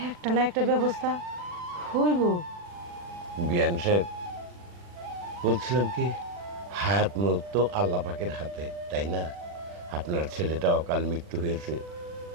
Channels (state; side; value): late; left; 40 ms